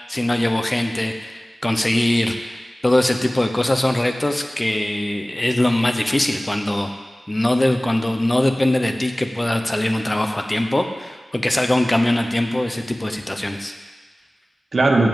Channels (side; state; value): both; normal; correlation 0.98